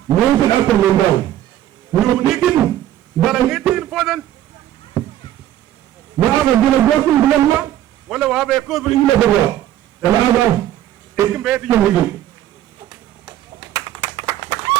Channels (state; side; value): quieter; left; 12.4 dB